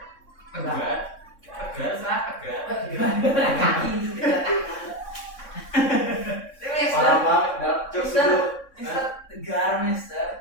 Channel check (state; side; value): late; right; 3.6 ms